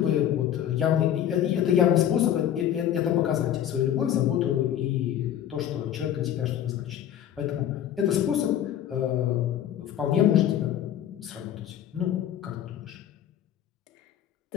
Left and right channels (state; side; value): quieter; right; 10.7 dB